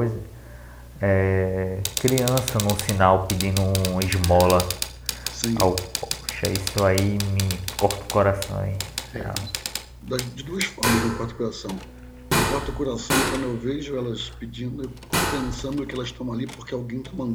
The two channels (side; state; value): both; identical; correlation 1.00